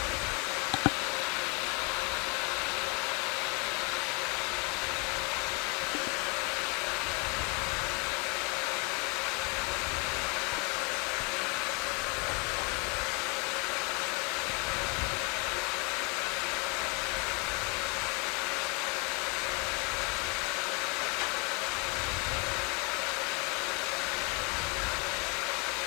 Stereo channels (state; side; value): quieter; right; 31.5 dB